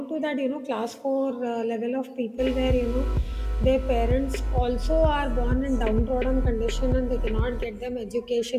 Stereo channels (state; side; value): identical; both; correlation 1.00